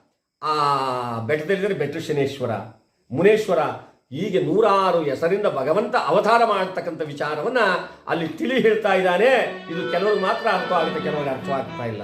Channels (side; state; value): both; identical; correlation 1.00